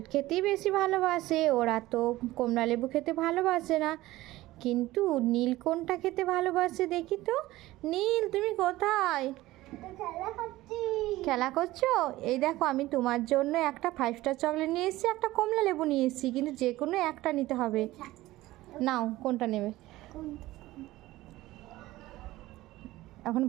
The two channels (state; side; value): quieter; left; 17.3 dB